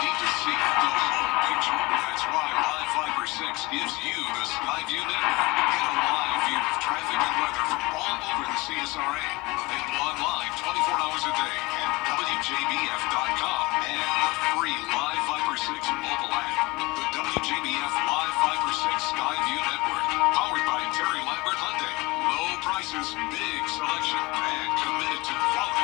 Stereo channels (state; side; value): quieter; right; 23.0 dB